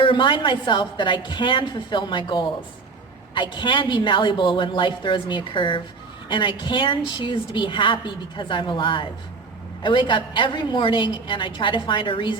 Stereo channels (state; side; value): quieter; left; 4.4 dB